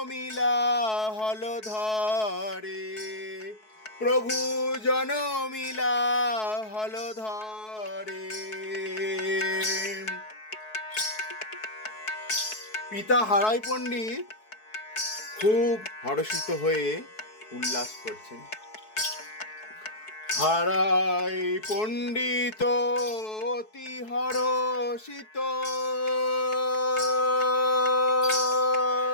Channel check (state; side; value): late; right; 4.6 ms